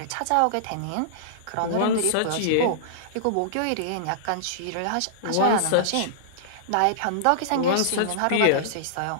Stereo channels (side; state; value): both; different; correlation -0.02